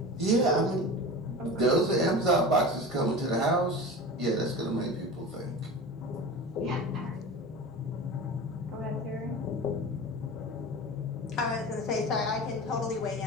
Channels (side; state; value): both; normal; correlation 0.32